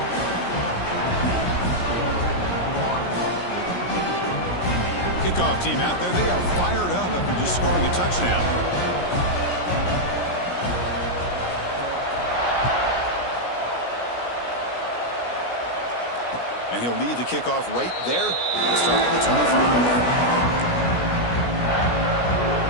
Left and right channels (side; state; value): right; late; 17 ms